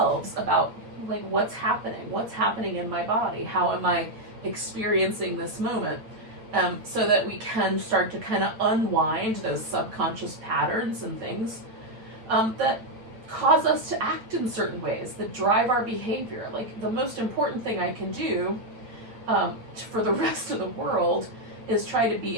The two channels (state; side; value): late; left; 8.8 ms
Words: about like what's happening in my body, how am I experiencing this moment. So that we can start to kind of unwind those subconscious patterns and things that cause us to act in certain ways, that drive our behavior. Like the most important thing I can do for the rest of the world is try to